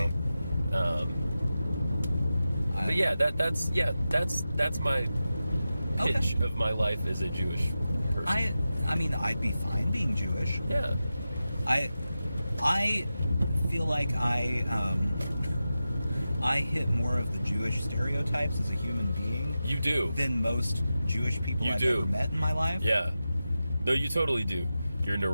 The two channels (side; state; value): both; inverted; correlation -0.93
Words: know. But yeah, that's my pitch of my life as a Jewish person. I mean, I'd be fine being Jewish. Yeah. I feel like I hit more of the Jewish stereotypes as a human being You do. than most Jewish people You I've do. ever met in my life. Yeah. No, you totally do. You're